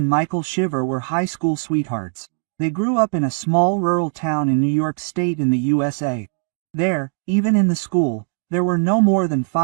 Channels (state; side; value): silent; left; 59 dB below the other